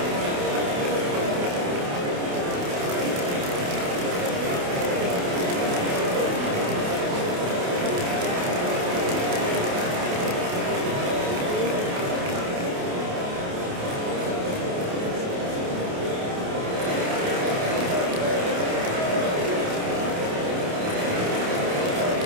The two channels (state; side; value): late; left; 28 ms